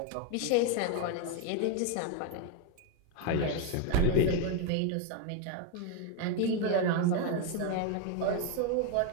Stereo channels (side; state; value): both; different; correlation 0.01